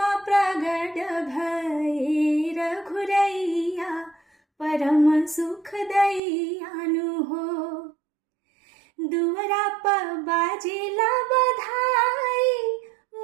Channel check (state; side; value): drops out; left; at 6.2 s